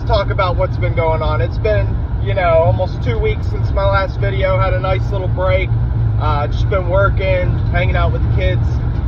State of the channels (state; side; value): identical; both; correlation 1.00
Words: talk about what's been going on. It's been, almost 2 weeks since my last video. Had a nice little break. Just been working, hanging out with the kids,